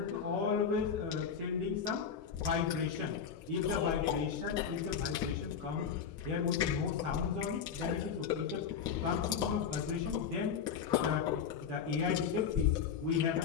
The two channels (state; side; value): quieter; right; 7.1 dB